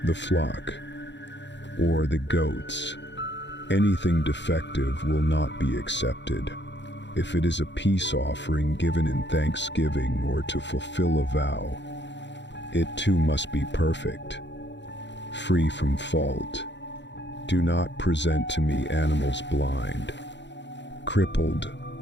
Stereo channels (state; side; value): late; right; 0.52 ms